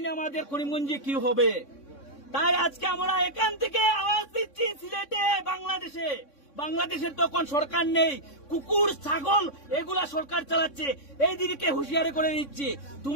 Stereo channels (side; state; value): right; late; 3.6 ms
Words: আমাদের করিমগঞ্জে কি হবে। তাই আজকে আমরা এখান থেকে আওয়াজ দিচ্ছি সিলেটে, বাংলাদেশের তখন সরকার নেই, কুকুর ছাগল এগুলা সরকার চালাচ্ছে। এই দিকে হুঁশিয়ারি করে দিচ্ছি,